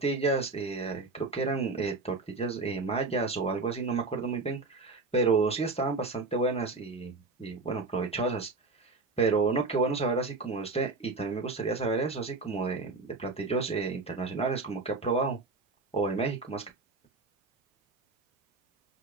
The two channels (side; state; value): left; quieter; 3.6 dB